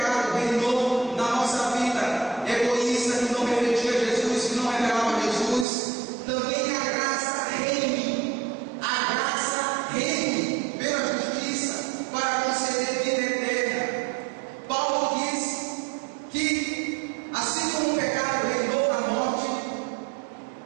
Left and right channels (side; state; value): left; drops out; at 5.7 s